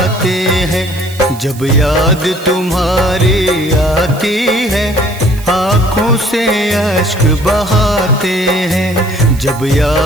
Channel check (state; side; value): noise; right; hiss, 18 dB below the sound